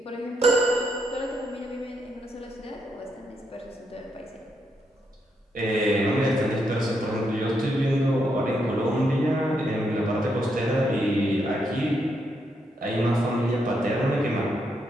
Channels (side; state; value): both; normal; correlation 0.79